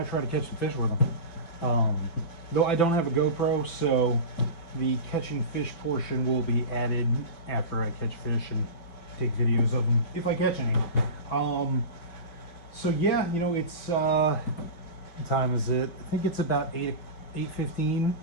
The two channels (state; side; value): late; right; 6.0 ms